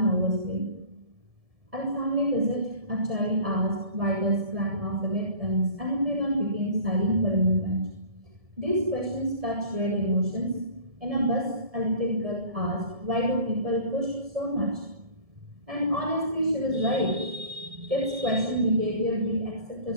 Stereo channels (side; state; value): left; late; 1.7 ms